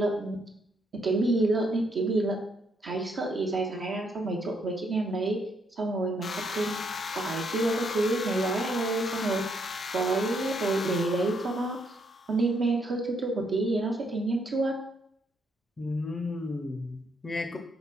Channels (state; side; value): normal; both; correlation 0.74